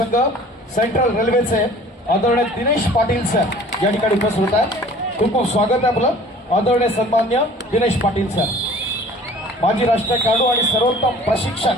सेंट्रल रेल्वेचे आदरणीय दिनेश पाटील सर या ठिकाणी उपस्थित होत आहेत. खूप खूप स्वागत आहे आपलं आदरणीय सन्मान्य दिनेश पाटील सर. माजी राष्ट्रीय खेळाडू आणि सर्वोत्तम प्रशिक्षक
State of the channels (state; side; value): normal; both; correlation 0.48